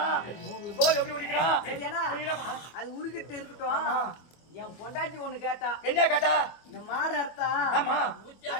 தோல் எப்படி உரிக்கிறான்? சரியானா அது உருகிட்டு இருக்கட்டும். என் பொண்டாட்டி ஒண்ணு கேட்டா. என்ன கேட்டா? இந்த மாடு அறுத்தா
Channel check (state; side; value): late; right; 25 ms